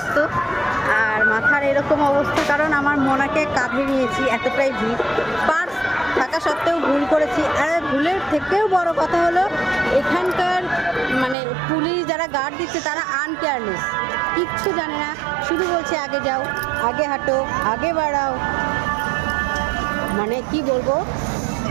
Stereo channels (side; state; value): left; drops out; at 11.4 s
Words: আর মাথার এরকম অবস্থা, কারণ আমার মোনাকে কাঁধে নিয়েছি, এতটাই ভিড়। পার্স থাকা সত্ত্বেও ভুল করেছি। আর ভুলের থেকেও বড় কথা হলো এখানকার মানে পুলিশ যারা গার্ড দিচ্ছে তারা আনকেয়ারলেস, কিচ্ছু জানে না, শুধু বলছে আগে যাও, আগে হাঁটো, আগে বাড়াও। মানে কি বলবো,